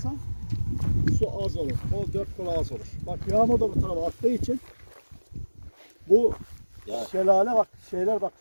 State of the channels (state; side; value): inverted; both; correlation -1.00